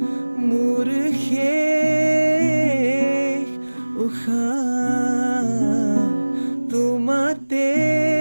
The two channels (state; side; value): inverted; both; correlation -1.00